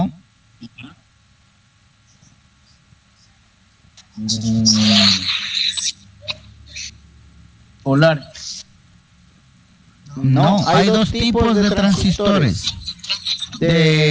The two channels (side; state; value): both; identical; correlation 1.00